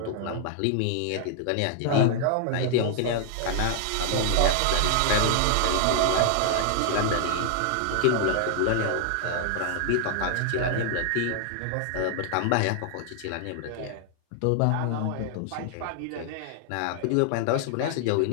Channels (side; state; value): both; different; correlation 0.00